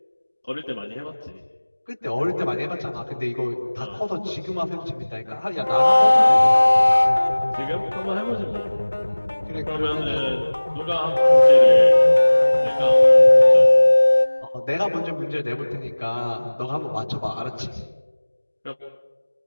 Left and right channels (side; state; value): both; inverted; correlation -1.00